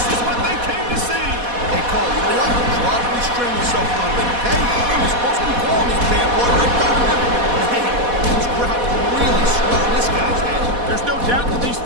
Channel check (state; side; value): late; left; 4.1 ms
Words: is what they came to see. Hey, Cole, you know what? Try to restrain yourself a little bit, okay? You're supposed to be calling this bad boy right down the middle. Man, this crowd is really swelling this guy's head. There's no doubt that these